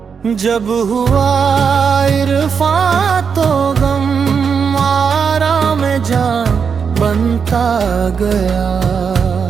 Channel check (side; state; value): left; quieter; 6.3 dB